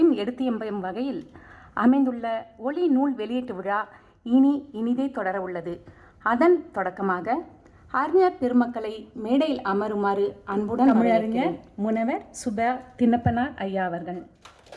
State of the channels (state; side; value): identical; both; correlation 1.00